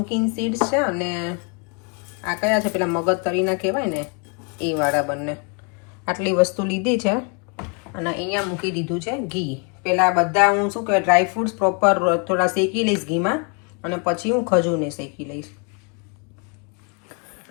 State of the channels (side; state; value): right; quieter; 35.4 dB